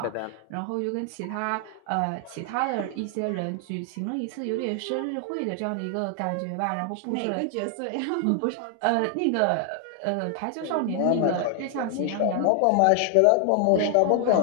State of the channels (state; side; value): different; both; correlation 0.00